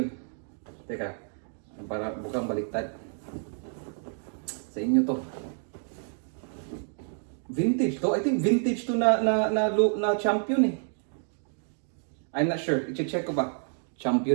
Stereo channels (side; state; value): left; silent; 59 dB below the other